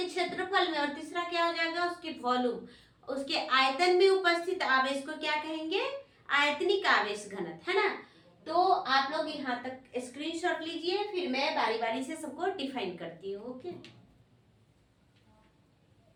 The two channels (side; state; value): both; identical; correlation 1.00